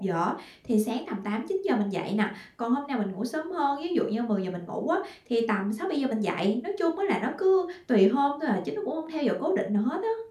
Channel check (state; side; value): identical; both; correlation 1.00